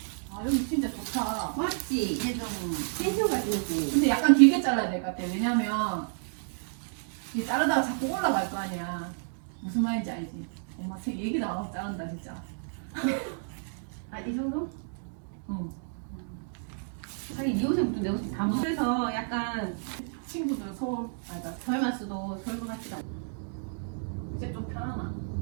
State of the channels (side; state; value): left; silent; digital silence